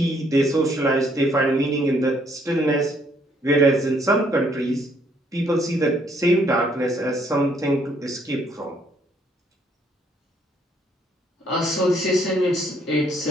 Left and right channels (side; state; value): both; normal; correlation 0.68